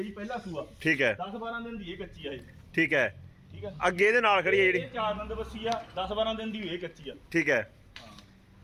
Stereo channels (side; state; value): both; identical; correlation 1.00